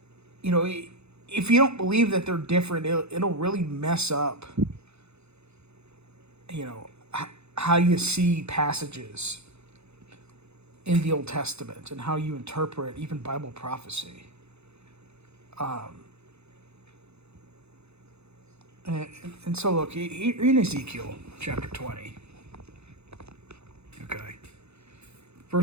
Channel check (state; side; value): late; left; 0.80 ms